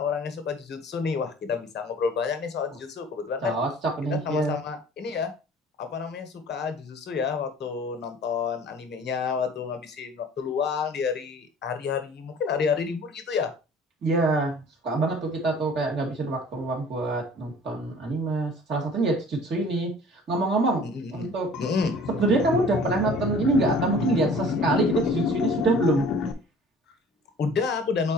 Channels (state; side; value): normal; both; correlation 0.48